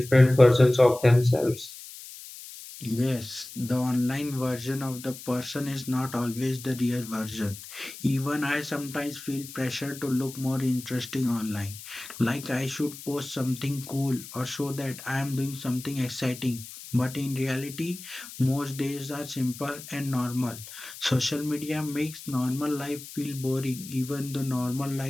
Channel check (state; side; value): noise; left; hiss, 14 dB below the sound